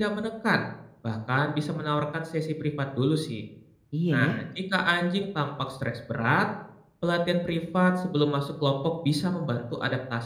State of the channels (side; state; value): both; identical; correlation 1.00